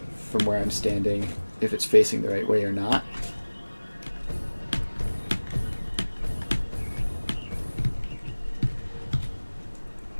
from where I'm standing if it's facing the right way or not.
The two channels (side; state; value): both; inverted; correlation -1.00